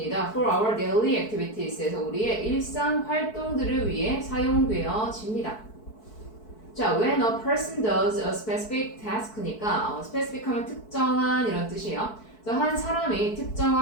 For our daily activities에서 우리의 일상 활동들을 위해 사용되어집니다. 자, when a person does a specific task니까 specific 하면 특정한 이런 뜻이에요. 그래서 한 사람이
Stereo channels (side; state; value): right; late; 4.6 ms